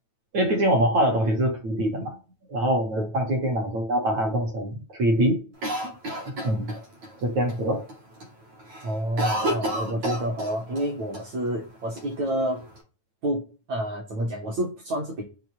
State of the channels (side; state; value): left; late; 9.1 ms